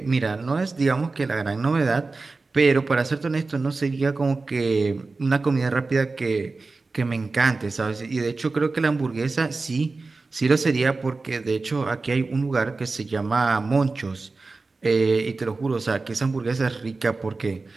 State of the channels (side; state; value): left; quieter; 3.8 dB